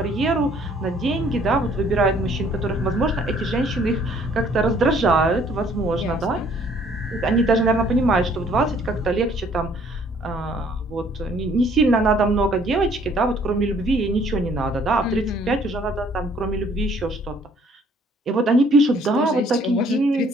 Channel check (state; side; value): normal; both; correlation 0.60